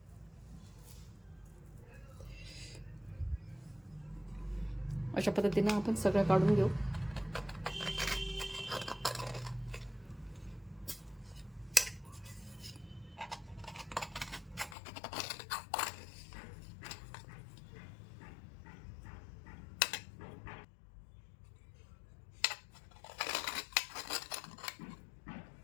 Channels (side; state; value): right; drops out; at 14.8 s